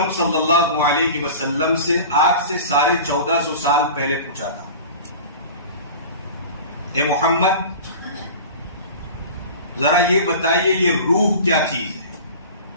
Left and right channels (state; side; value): inverted; both; correlation -0.37